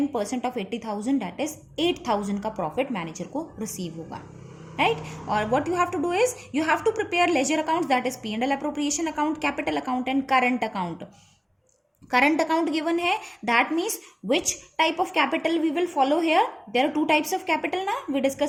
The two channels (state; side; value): identical; both; correlation 1.00